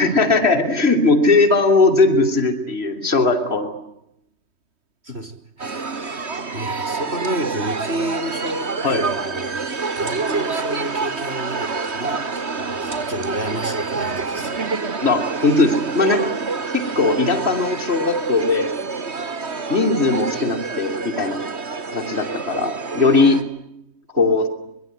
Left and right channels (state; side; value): late; left; 3.2 ms